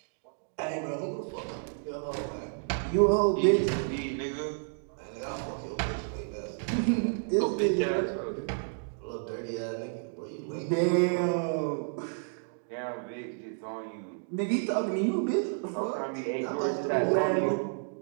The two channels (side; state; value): left; silent; digital silence